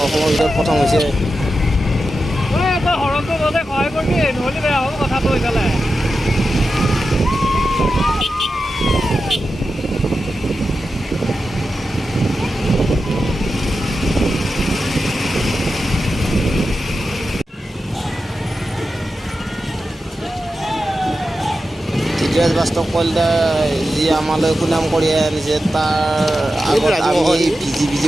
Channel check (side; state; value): both; normal; correlation 0.91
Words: অসমৰ ভিতৰত প্ৰথম হৈছে। সহায় কৰিবি, নহ'লে বেয়া হ'ব কথাটো এইফালে। ধীৰাজ বাস্তৱ কলিতা যি আমালৈ সুনাম কঢ়িয়াই আনিছে, তাৰ আগত আমি